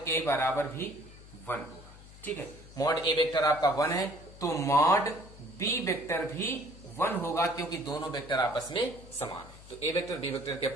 ए बराबर भी 1 होगा, ठीक है। मॉड ए वेक्टर आपका 1 है, तो मॉड बी वेक्टर भी 1 होगा, क्योंकि दोनों वेक्टर आपस में समान है। तो ए वेक्टर बी वेक्टर के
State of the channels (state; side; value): noise; left; hum, 19 dB below the sound